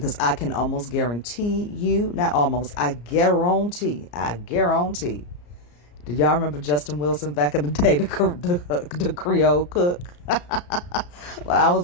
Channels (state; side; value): late; right; 34 ms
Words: I can almost guarantee you, not almost, I guarantee. Did y'all remember Justin Wilson back in the day, the Creole cook? When I was